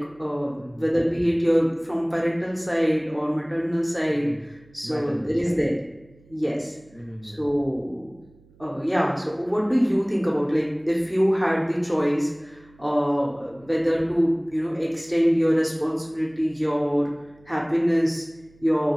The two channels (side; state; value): right; noise; hum, 29 dB below the sound